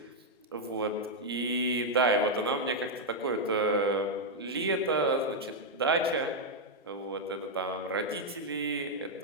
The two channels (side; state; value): both; normal; correlation -0.02